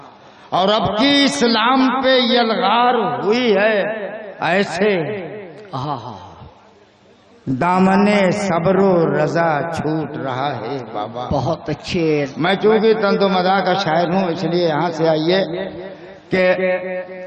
और अब की इस्लाम पे यलगार हुई है ऐसे, दामने सब्रो रजा छूट रहा है बाबा। बहुत अच्छे। मैं चूंकि तंदो मदा का शायर हूं, इसलिए यहां से आइए कि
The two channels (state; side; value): identical; both; correlation 1.00